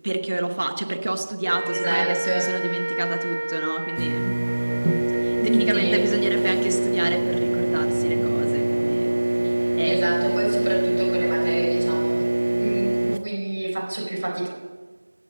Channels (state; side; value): inverted; both; correlation -1.00